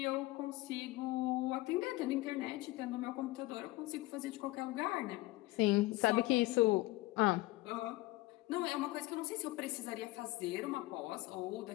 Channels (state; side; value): quieter; right; 19.6 dB